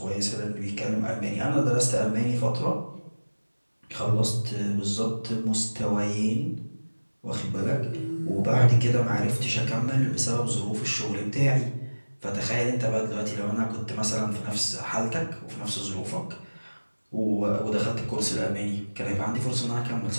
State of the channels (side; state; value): both; inverted; correlation -1.00